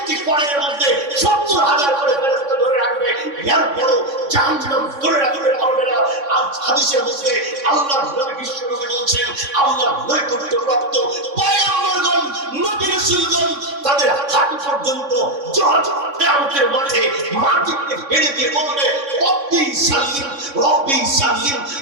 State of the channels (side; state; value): left; late; 3.6 ms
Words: পরের মধ্যে 70,000 করে ফেরেশতা ধরে রাখবে। এরপরও জাহান্নাম ধরে রাখতে পারবে না। আর হাদিসের মধ্যে আল্লাহর নবী বিশ্বনবী বলছেন আল্লাহর নৈকট্যপ্রাপ্ত পয়গম্বরগণ, নবী রাসূলগণ তাদের হাঁটু পর্যন্ত কিয়ামতের মাঠে মাটিতে ফেলে দিয়ে বলবে রব্বি সাল্লিম, রব্বি সাল্লিম,